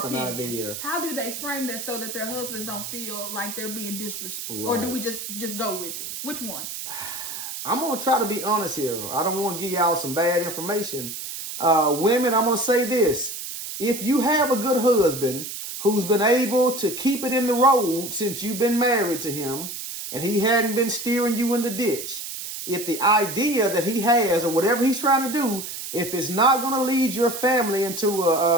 how do they frame that so that their husbands don't feel like they're being disrespectful? Right. Or do we just go with it? Which one? I'm going to try to be honest here. I don't want to give y'all some bad information. Women, I'm going to say this. If you have a good husband who's been able to keep it in the road since you've been married to him and he hadn't been steering you in the ditch, if the idea that he has or whatever he's trying to do, if it's not going to lead your family into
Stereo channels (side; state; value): right; noise; hiss, 7 dB below the sound